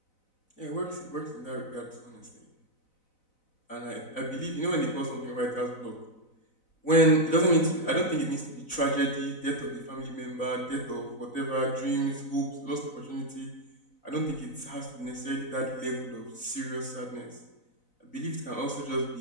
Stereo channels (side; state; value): right; late; 4.0 ms